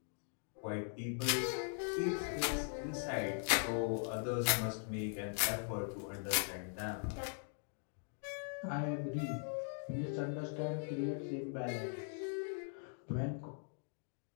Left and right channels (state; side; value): silent; right; 51 dB below the other